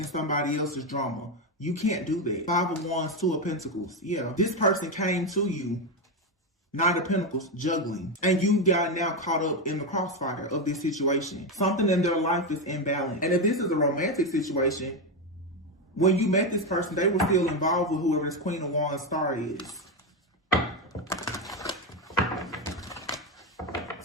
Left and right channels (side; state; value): both; normal; correlation 0.10